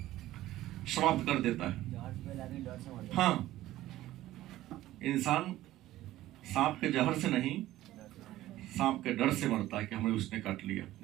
समाप्त कर देता है। हाँ, इंसान सांप के जहर से नहीं, सांप के डर से मरता है कि हमें उसने काट लिया।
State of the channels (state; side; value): quieter; left; 15.1 dB